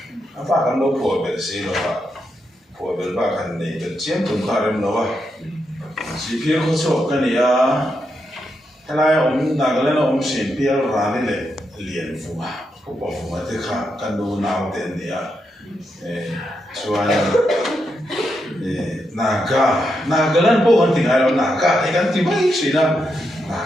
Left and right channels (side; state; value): both; normal; correlation 0.83